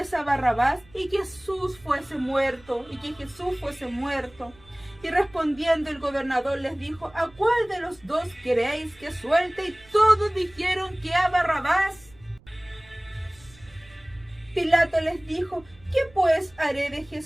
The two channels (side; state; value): right; noise; rumble, 26 dB below the sound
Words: a Barrabás y que Jesús fuese muerto, Y respondiendo el gobernador les dijo: ¿a cuál de los dos queréis que suelte? Y todos dijeron que a Barrabás. Pilato les dijo: ¿qué pues haré de